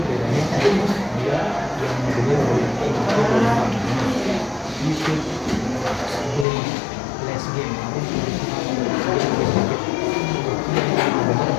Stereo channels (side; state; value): right; drops out; at 6.5 s